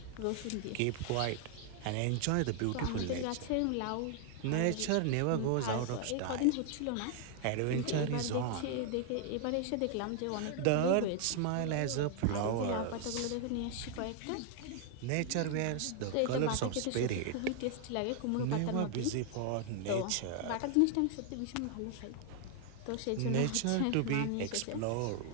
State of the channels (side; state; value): both; different; correlation 0.00